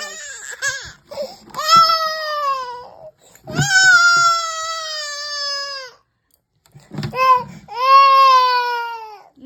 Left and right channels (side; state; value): both; identical; correlation 1.00